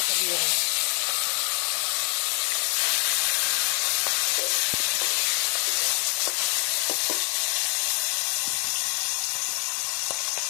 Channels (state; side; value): quieter; right; 37.8 dB